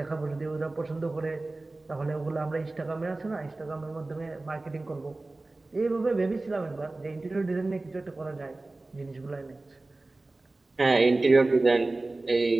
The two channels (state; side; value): quieter; left; 3.1 dB